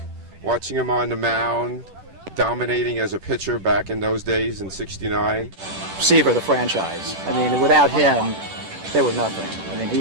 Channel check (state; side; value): late; left; 10 ms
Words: Watching him on the mound, dominating as a pitcher back in those days in '69. Seaver, the franchise. I mean, without him, they were nothing. I mean,